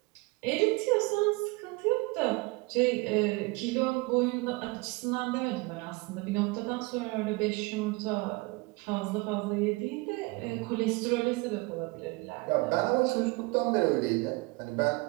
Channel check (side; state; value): left; quieter; 24.9 dB